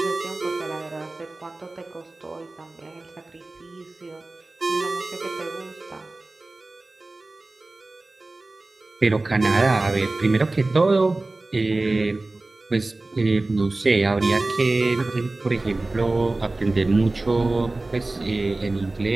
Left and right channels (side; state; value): left; quieter; 3.0 dB